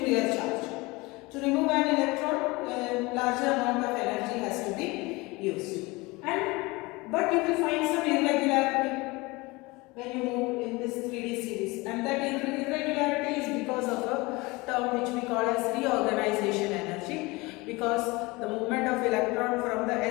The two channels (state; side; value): quieter; right; 23.6 dB